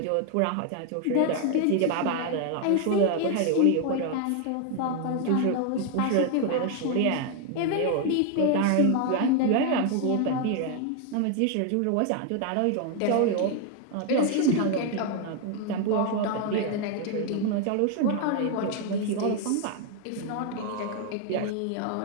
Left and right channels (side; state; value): both; different; correlation 0.00